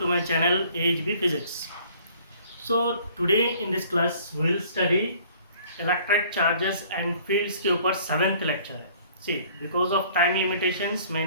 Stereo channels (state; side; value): inverted; both; correlation -0.55